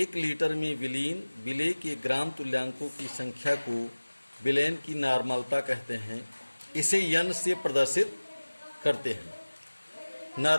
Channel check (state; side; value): inverted; both; correlation -1.00